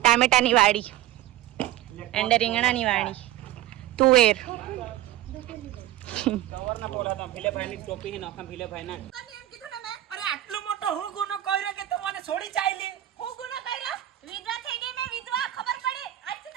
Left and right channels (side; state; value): left; quieter; 13.9 dB